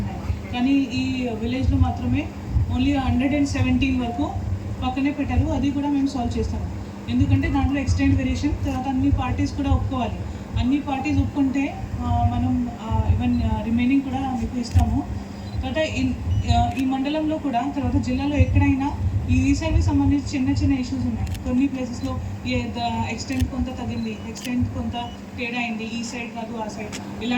ఉన్నాయి. కానీ ఈ విలేజ్లో మాత్రమే ఓన్లీ 117 వరకు పక్కనే పెట్టారు. అది కూడా మేము సాల్వ్ చేస్తాము. ఎందుకంటే దాంట్లో ఎక్స్టెంట్ వేరియేషన్, తర్వాత అన్ని పార్టీస్ కూడా ఒప్పుకోవాలి. అన్ని పార్టీస్ ఒప్పుకుంటే మనం ఈవెన్ రిమైనింగ్ కూడా మీకు ఇస్తాము. తర్వాత ఈ మండలంలో కూడా, తర్వాత జిల్లాలో ఎక్కడైనా ఈ రీసర్వే సంబంధించి చిన్న చిన్న ఇష్యూస్ ఉన్నాయి. కొన్ని ప్లేసెస్లో ఎక్స్టెంట్ కొంత తగ్గింది, ఎక్స్టెంట్ కొంత తేడా అయింది, ఈ సైడ్ కాదు ఆ సైడ్,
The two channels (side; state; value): both; identical; correlation 1.00